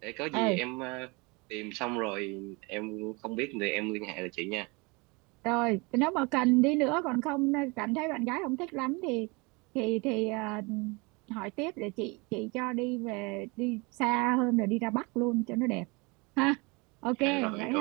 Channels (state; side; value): quieter; left; 27.6 dB